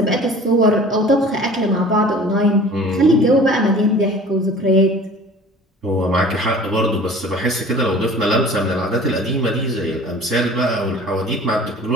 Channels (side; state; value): both; normal; correlation 0.45